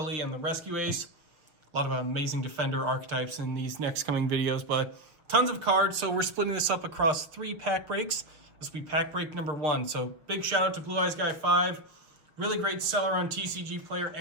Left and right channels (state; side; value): late; left; 6.3 ms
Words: and the Rescue ACE. A lot of amazing Defender archetypes in these next coming videos, but tons of cards, so we're splitting this up across 3 pack breaks. This will be pack break number 1, so big shout out to Blue Eyes Guy 5. Really great seller on TCG Player